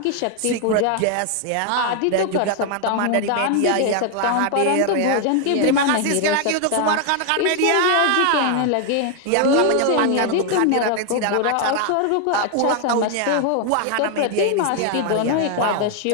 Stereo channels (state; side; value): different; both; correlation 0.00